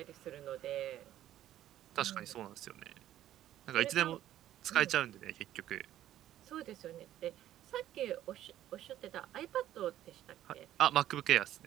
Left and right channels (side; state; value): left; quieter; 12.6 dB